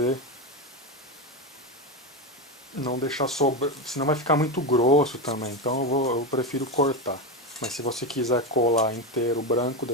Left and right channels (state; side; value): normal; both; correlation 0.14